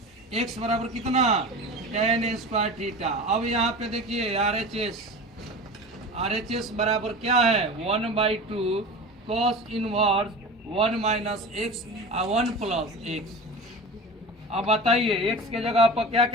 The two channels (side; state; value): both; normal; correlation 0.33